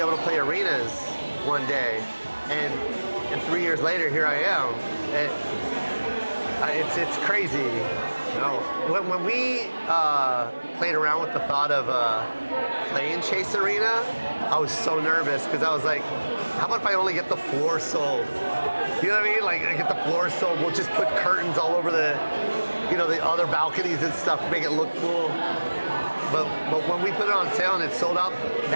to play arenas one day, and 3 years later, here I am. It's crazy. You know, when we played around with the thought of playing Chase Arena, I was so nervous because I was like, how about if I only get the floor sold? You know what I mean? Like, I get the floor sold. We'll just put curtains all over the, you know, the other balconies and stuff to make it look cool. But when we put it on sale and it sold out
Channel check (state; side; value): inverted; both; correlation -1.00